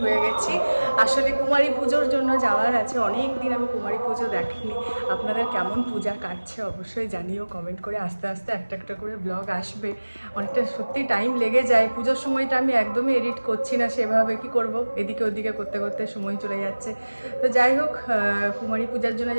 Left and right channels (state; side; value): inverted; both; correlation -1.00